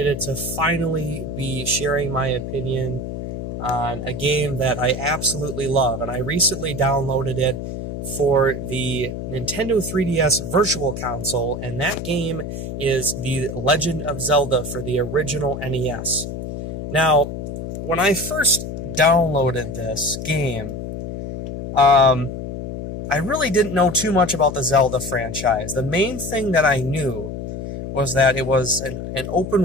to finally be sharing my opinion on a game that I absolutely love, and I recently downloaded it for the Nintendo 3DS Virtual Console, and that game is the Legend of Zelda for the original NES. Now, when I first downloaded this game, I really didn't know too much about the Zelda franchise. The main thing that I knew was that it was an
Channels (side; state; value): left; noise; hum, 6 dB below the sound